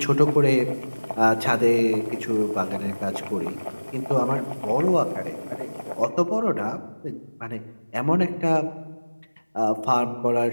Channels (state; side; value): inverted; both; correlation -1.00